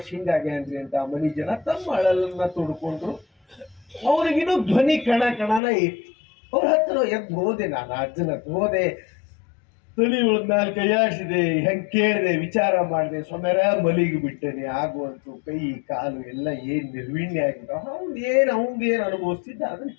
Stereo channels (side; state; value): right; drops out; at 5.6 s